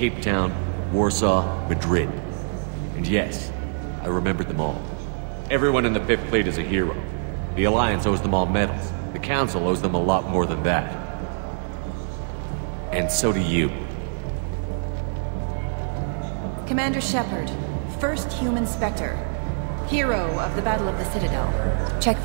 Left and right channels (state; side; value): silent; left; digital silence